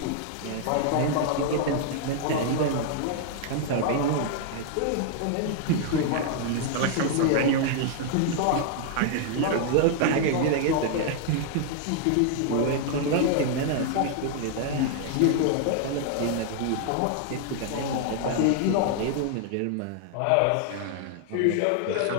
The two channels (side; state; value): both; different; correlation 0.00